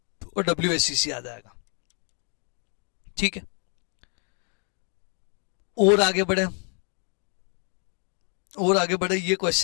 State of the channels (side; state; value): right; quieter; 39.4 dB